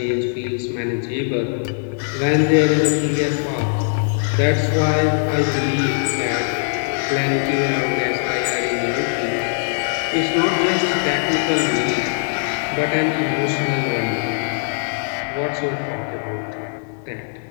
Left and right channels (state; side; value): silent; right; 62 dB below the other